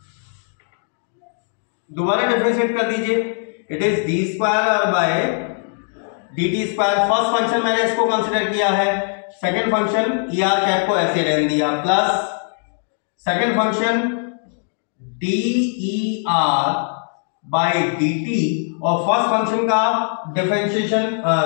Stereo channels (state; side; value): silent; right; 59 dB below the other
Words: दोबारा डिफरेंशिएट कर दीजिए, it is d square r by D t square. First function मैंने इसको consider किया है, second function e r cap को ऐसे रहने दिया, plus second function d e r by d t, और फर्स्ट फंक्शन का डिफरेंशिएशन